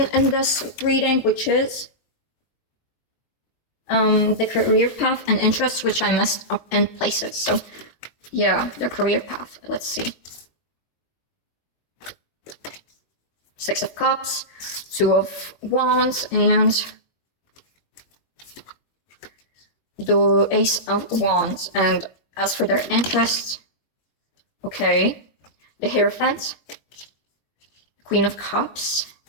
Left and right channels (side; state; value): right; late; 21 ms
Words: in this reading, which is the career path and interests, which I messed up in places. So yeah, the career path, let's see. 6 of Cups, 2 of Wands, and the Ace of Wands. And as for their interests, okay, the Hierophant, Queen of Cups,